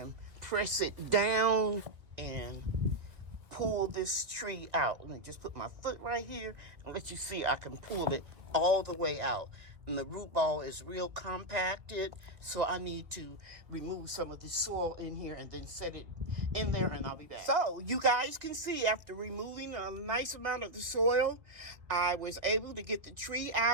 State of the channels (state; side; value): late; left; 2.3 ms